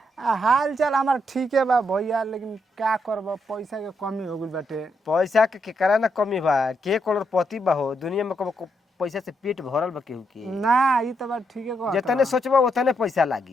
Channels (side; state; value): both; normal; correlation 0.79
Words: हाल चाल हमार ठीक है बा भैया, लेकिन का करब पैसा के कमी हो गइल बाटे। पैसा के केकरा ना कमी बा, के करोड़पति बा हो दुनिया में, कबो पैसा से पेट भरल बा केहू के। ना ई तो बात ठीक है जितने सोचबा उतने पैसा